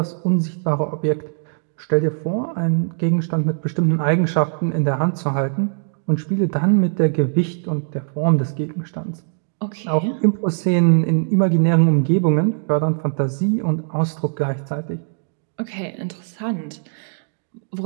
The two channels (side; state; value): left; silent; 59 dB below the other